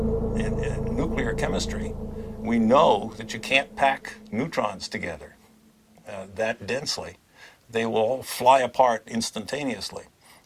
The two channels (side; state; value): both; identical; correlation 1.00